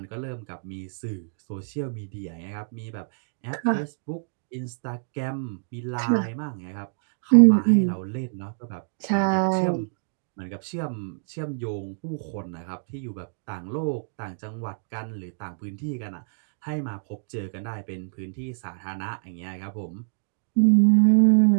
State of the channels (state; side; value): silent; left; digital silence